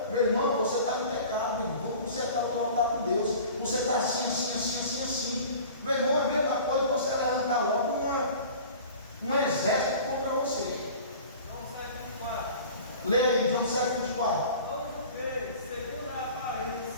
meu irmão, você está no pecado, meu irmão. Você está no altar com Deus. Você está assim. Meu irmão, é a mesma coisa que você levantar logo um exército contra você. João 7:24. Lê aí, João 7:24. Não julgueis segundo a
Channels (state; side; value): inverted; both; correlation -0.42